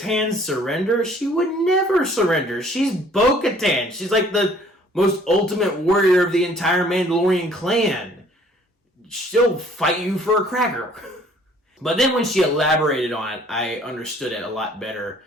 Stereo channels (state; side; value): normal; both; correlation 0.57